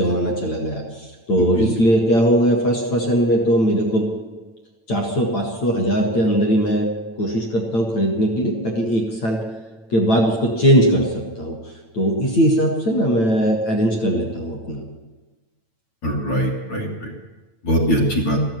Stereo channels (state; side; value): late; right; 8.9 ms